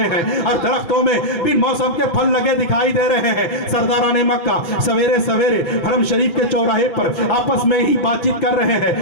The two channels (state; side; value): late; right; 5.9 ms